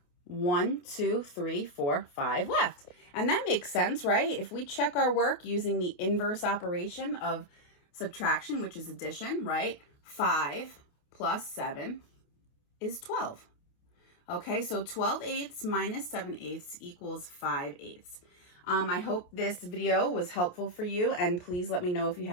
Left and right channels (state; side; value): late; right; 28 ms